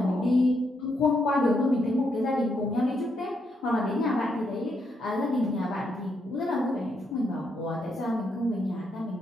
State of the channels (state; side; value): normal; both; correlation 0.78